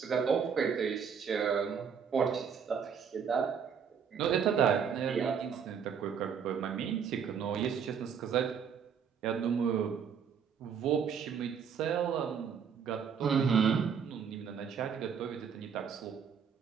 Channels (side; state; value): left; quieter; 7.1 dB